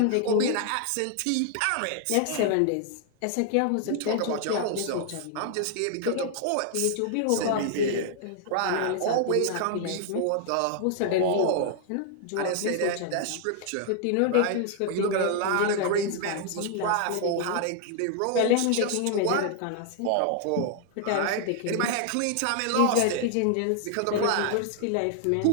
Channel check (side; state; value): both; different; correlation 0.00